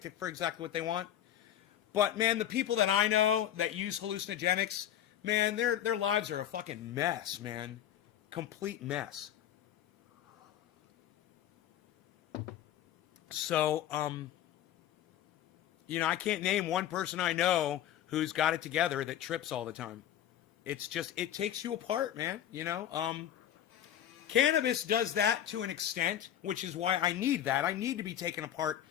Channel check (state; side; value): quieter; right; 11.1 dB